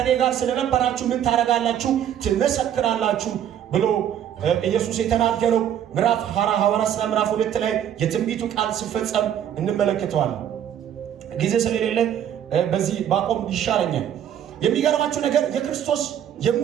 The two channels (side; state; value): left; quieter; 10.0 dB